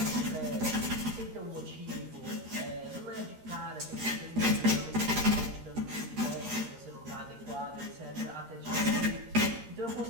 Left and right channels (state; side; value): late; left; 13 ms